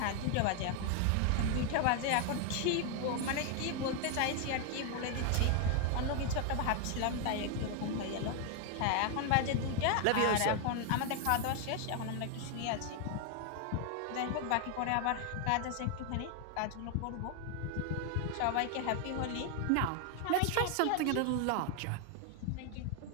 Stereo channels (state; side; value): different; both; correlation 0.00